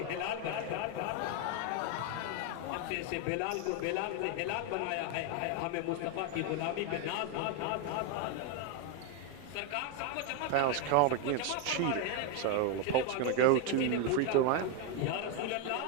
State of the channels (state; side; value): different; both; correlation 0.01